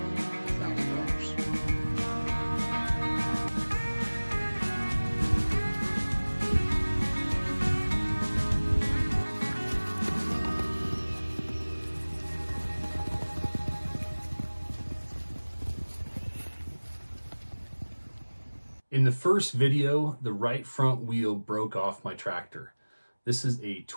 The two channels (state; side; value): inverted; both; correlation -1.00